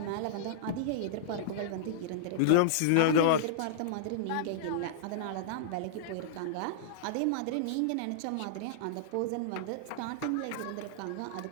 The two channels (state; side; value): different; both; correlation -0.02